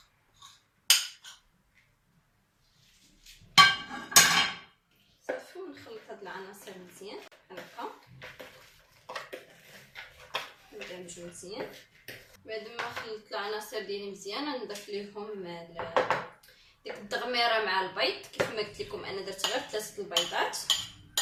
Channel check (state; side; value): identical; both; correlation 1.00